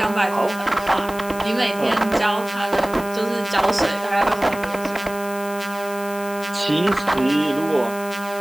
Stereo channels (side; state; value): left; noise; hiss, 16 dB below the sound